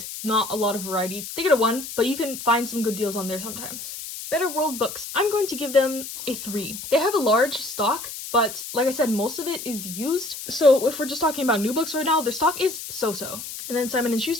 not a lot of variety. They get a 1, but you can find some good deals on there sometimes. Better World Books, I'm going to give them a 3. They have a large stock, but like I said, most of it is used. So if we're just talking about new books right now, their stock is so-so. And then Simon &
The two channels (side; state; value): left; noise; hiss, 9 dB below the sound